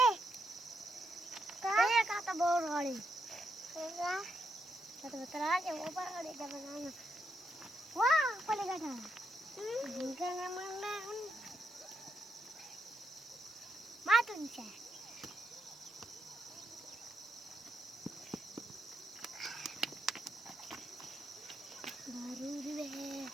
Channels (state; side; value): noise; right; hiss, 28 dB below the sound